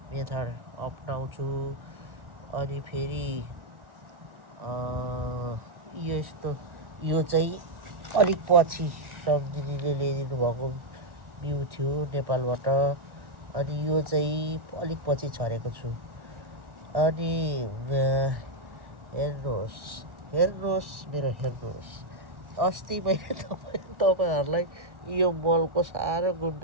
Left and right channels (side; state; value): left; late; 1.1 ms